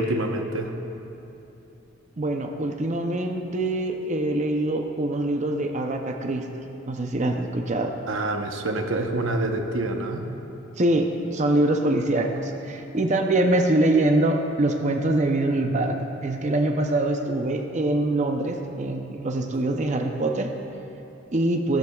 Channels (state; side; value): normal; both; correlation 0.54